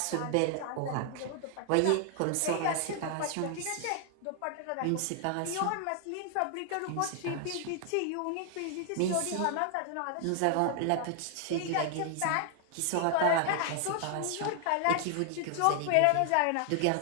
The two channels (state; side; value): different; both; correlation 0.00